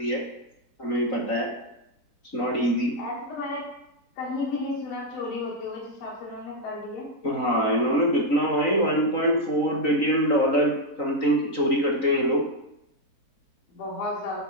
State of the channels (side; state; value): right; late; 3.9 ms